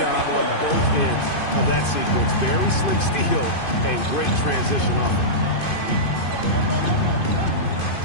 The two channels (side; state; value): right; late; 2.5 ms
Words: on both ends of that sequence. Very slick steal and great transition offense.